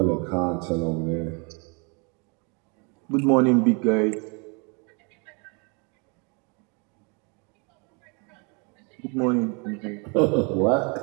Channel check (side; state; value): left; quieter; 33.1 dB